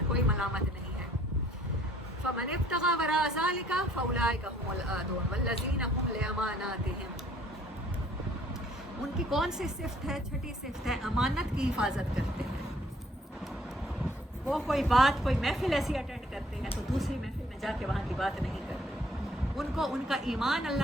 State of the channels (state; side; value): normal; both; correlation 0.60